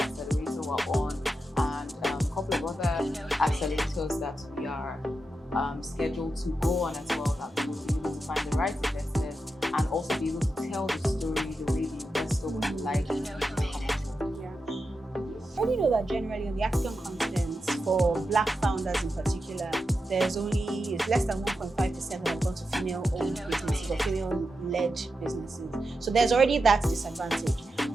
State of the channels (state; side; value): normal; both; correlation 0.89